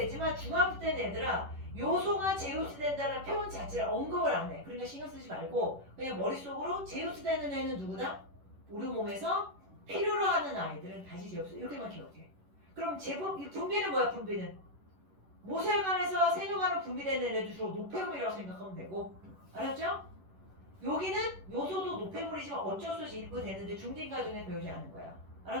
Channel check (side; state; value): left; late; 11 ms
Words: 중학교 때는 얘들아 요소가 제흡수된다는 표현 자체를 언급을 안 해. 그러니까 신경 쓰지 말고 그냥 머릿속으로 제흡수되는 애는 누구다? 우리 몸에서 필요로 하는 아이들은 다시 제흡수 이렇게만 기억해. 그럼 분비는 뭐야? 분비는 모세혈관에서 세뇨관으로 분비되는 애들 주로 노폐물이라고 생각하면 되고 알았죠? 여기는 요소도 노폐물이지만 어쩔 수 없이 일부 되는데 중딩과정에 배우지 않는 거야.